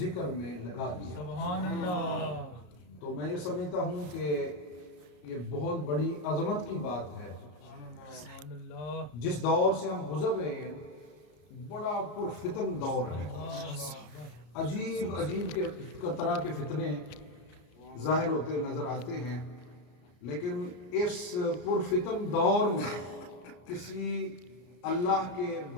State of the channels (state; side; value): late; right; 33 ms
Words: میں لگا دیا۔ سبحان اللہ۔ تو میں یہ سمجھتا ہوں کہ یہ بہت بڑی عظمت کی بات ہے۔ جس دور سے ہم گزر رہے ہیں بڑا پرفتن دور ہے، عجیب طرح کے فتنے ظاہر ہوتے نظر آتے ہیں، لیکن اس پرفتن دور میں کسی اللہ کے